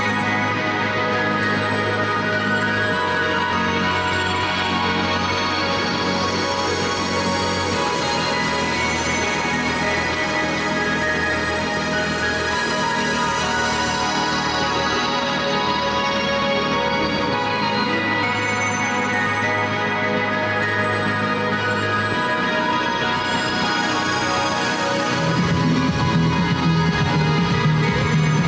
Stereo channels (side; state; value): both; identical; correlation 1.00